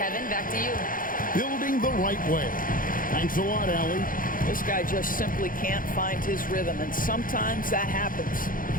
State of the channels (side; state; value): right; late; 0.40 ms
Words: Kevin, back to you. Building the right way. Thanks a lot, Allie. This guy just simply can't find his rhythm, and sometimes that happens.